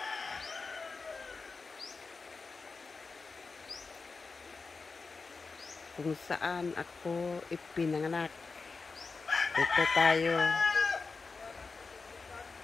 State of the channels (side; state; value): right; quieter; 4.3 dB